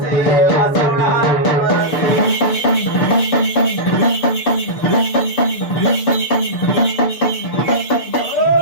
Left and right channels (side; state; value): right; late; 6.8 ms